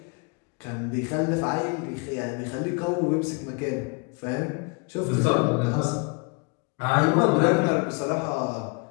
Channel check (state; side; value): quieter; right; 32.0 dB